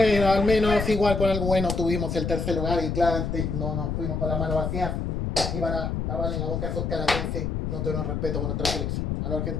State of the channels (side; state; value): left; noise; rumble, 2 dB below the sound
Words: al menos igual con algo bueno tuvimos el tercer lugar y claramente no nos fuimos con las manos vacías. Iban a taparle la boca a esos canadienses. No tenemos respeto por nuestra selección. A los